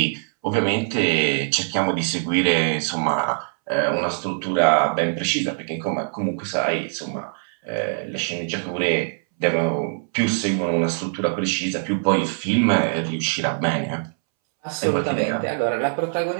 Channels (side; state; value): left; silent; 64 dB below the other